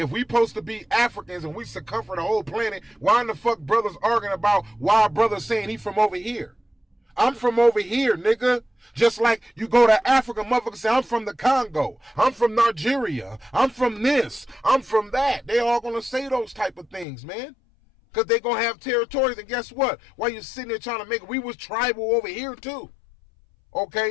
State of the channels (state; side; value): drops out; right; at 17.1 s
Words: we supposed to be Africans and we circumfer the whole planet, why in the fuck brothers arguing about why brothers saying he from over here? I'm from over here, nigga. Just like you go to Africa, motherfuckers say, I'm from the Congo. I'm from Nigeria. I'm from this. I'm from that. They all gonna say those type of things, man. Because they gonna have territories. And guess what? While you sitting there trying to make it, we was tribal over here too.